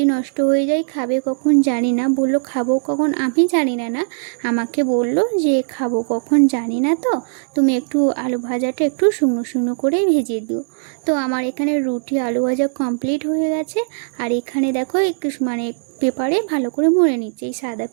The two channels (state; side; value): silent; left; 66 dB below the other